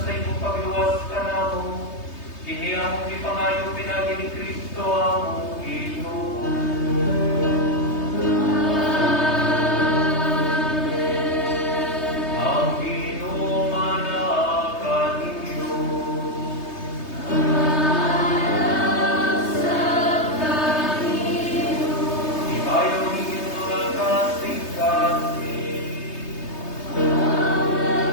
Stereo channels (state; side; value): late; right; 3.2 ms